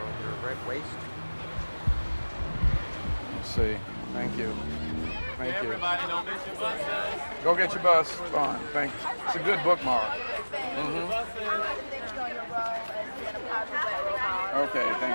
your red waist. Let's see. Thank you. Thank you. Everybody, don't miss your buses. Go get your bus. Fine. Thank you. It's a good bookmark. Okay,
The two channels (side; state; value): both; inverted; correlation -1.00